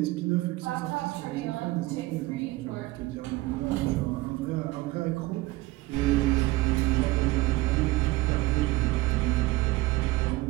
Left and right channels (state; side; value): quieter; left; 19.7 dB